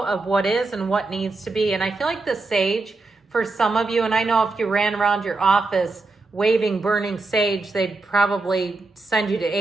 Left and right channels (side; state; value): left; quieter; 3.5 dB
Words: of what is and what needs to be. And I feel like the sage, for some of you, and I know if you ran around your office waving burning sage, they'd probably send you to